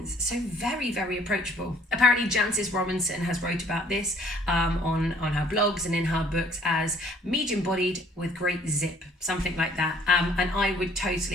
so very, very approachable. Apparently, Jancis Robinson has wrote about this on her blogs and in her books as medium-bodied with great zip, something like that. And I would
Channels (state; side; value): normal; both; correlation 0.58